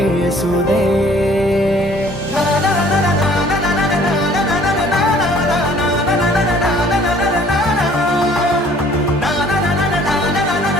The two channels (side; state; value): both; normal; correlation 0.56